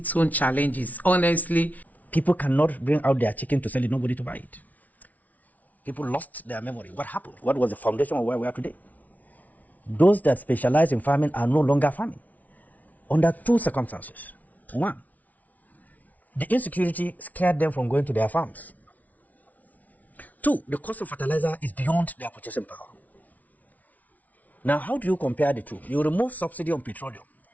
own challenges. Honestly, people cannot bring out their chicken to sell it, nobody to buy it. People lost their memory. What happened? What was the foundation of where we are today? Those that specialize in farming are no longer farming under two circumstances. One, the insecurity scared them from going to their farms. Two, the cost of fertilizer is beyond their purchasing power. Now, how do you compare the two? You remove subsidy on petroleum.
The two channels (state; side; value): late; right; 0.074 ms